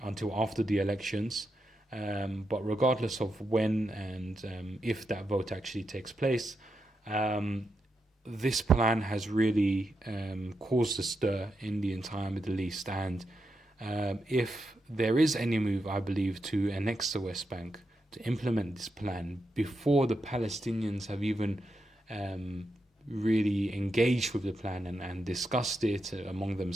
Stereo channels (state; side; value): normal; both; correlation 0.85